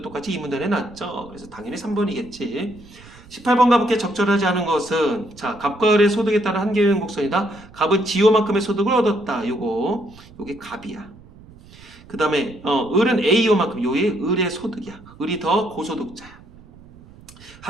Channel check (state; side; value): noise; right; rumble, 22 dB below the sound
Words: 똑같이 이 문단에 놨죠. 그래서 당연히 3번이겠지. 18번 가볼게. 적절하지 않은 것은 자 갑과 을의 소득에 따른 한계유형 곡선이다. 갑은 지호만큼의 소득을 얻었다. 요게 갑이야. 그 다음에 을은 A요만큼 요게 을의 소득이야. 을이 더 고소득자야.